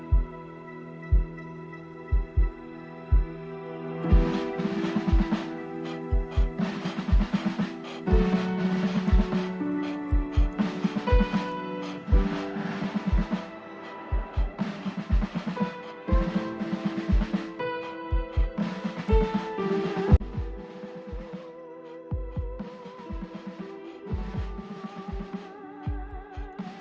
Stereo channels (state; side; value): identical; both; correlation 1.00